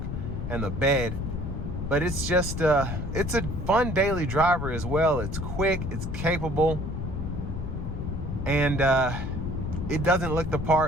and the bed. But it's just, it's a fun daily driver as well. It's quick, it's capable, and it doesn't look the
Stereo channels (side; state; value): left; noise; rumble, 4 dB below the sound